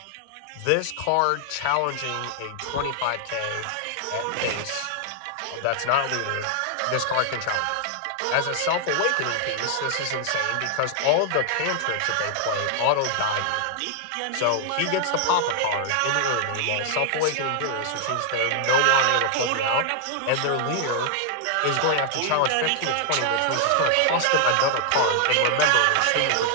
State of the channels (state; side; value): different; both; correlation 0.00